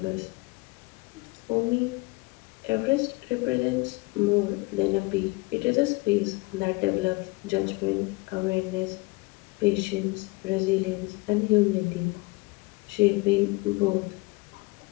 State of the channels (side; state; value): right; quieter; 24.6 dB